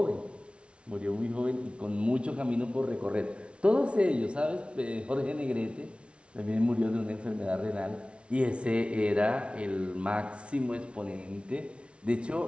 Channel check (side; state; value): left; late; 0.059 ms